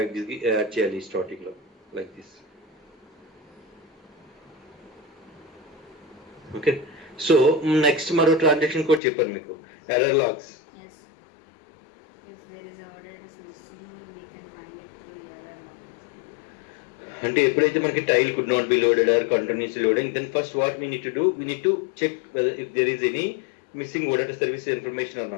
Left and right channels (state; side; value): drops out; right; at 9.0 s